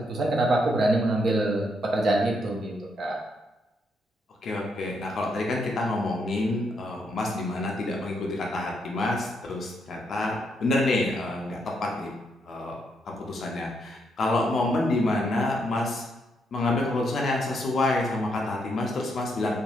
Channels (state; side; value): normal; both; correlation 0.77